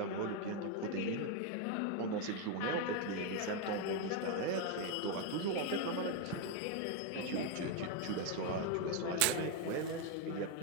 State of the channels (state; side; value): different; both; correlation 0.01